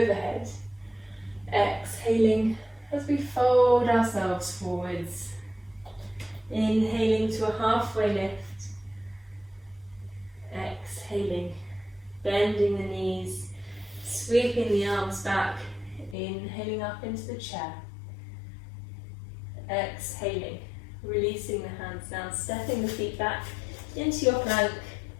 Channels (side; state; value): right; drops out; at 16.2 s